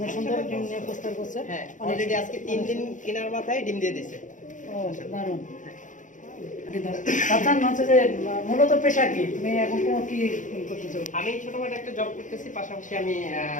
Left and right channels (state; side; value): late; right; 0.37 ms